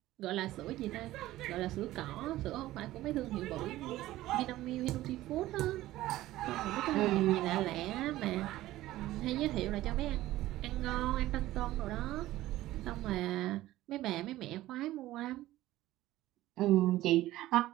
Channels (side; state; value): left; quieter; 15.8 dB